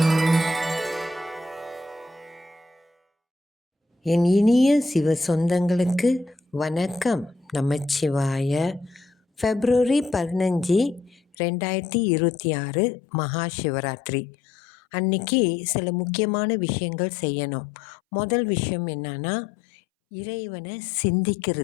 என் இனிய சிவ சொந்தங்களுக்கு வணக்கம். நமச்சிவாய. February 15, 2026 மகா சிவராத்திரி அன்னைக்கு சில முக்கியமான விஷயங்கள் செய்யணும். முதல் விஷயம் என்னன்னா, இறைவனை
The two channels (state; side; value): drops out; right; at 11.4 s